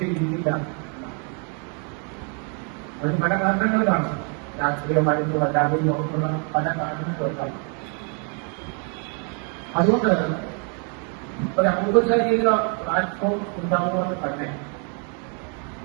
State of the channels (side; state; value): left; quieter; 38.7 dB